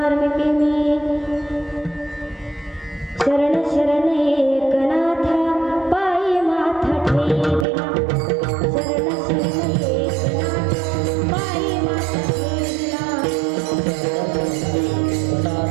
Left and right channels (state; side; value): drops out; left; at 7.7 s